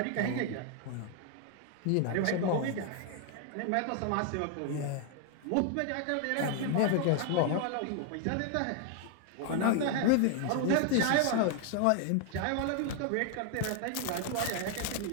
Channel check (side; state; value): both; different; correlation 0.00